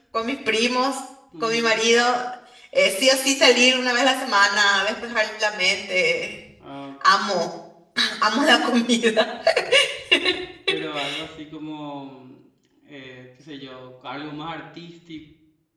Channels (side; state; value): both; identical; correlation 1.00